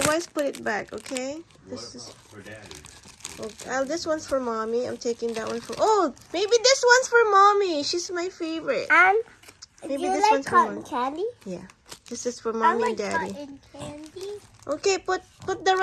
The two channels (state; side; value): identical; both; correlation 1.00